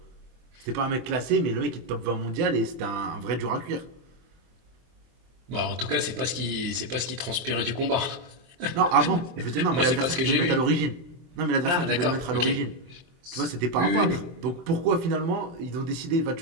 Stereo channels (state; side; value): late; left; 23 ms